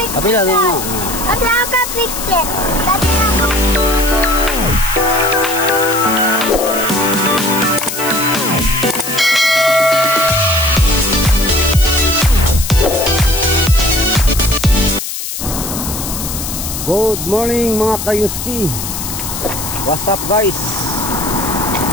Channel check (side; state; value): left; noise; hiss, 6 dB below the sound